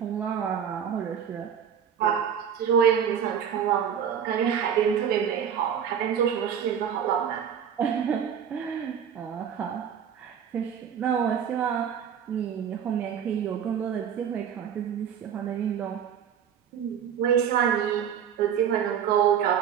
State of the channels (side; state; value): left; quieter; 8.3 dB